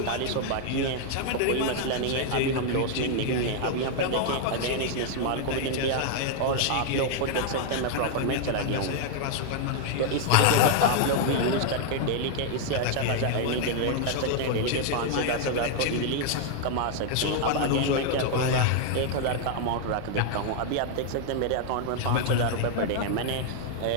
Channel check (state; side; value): different; both; correlation 0.00